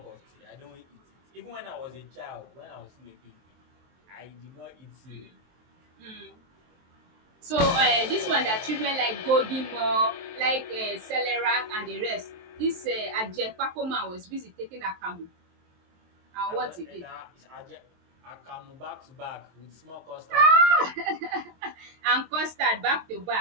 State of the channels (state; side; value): late; left; 23 ms